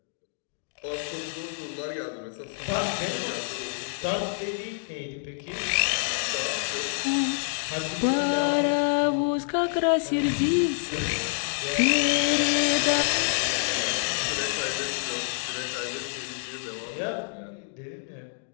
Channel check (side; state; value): right; silent; digital silence